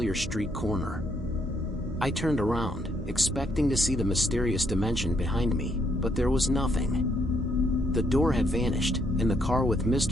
street corner. I turned around, expecting to see the mysterious dimension behind me, but there was nothing. The door had vanished, and the car with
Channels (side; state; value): both; normal; correlation 0.72